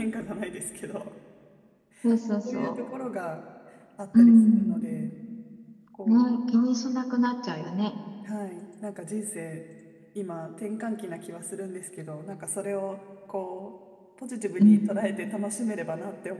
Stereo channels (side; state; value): both; identical; correlation 1.00